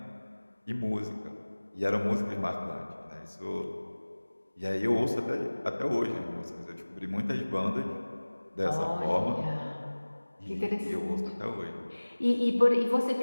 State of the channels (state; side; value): inverted; both; correlation -1.00